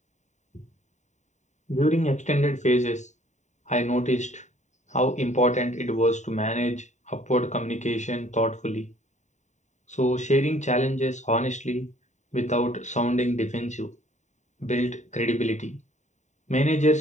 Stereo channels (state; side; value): late; right; 0.34 ms